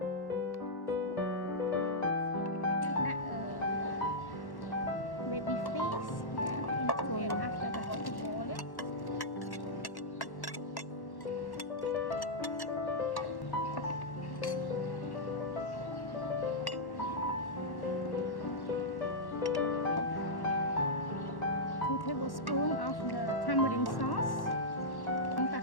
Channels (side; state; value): right; late; 1.1 ms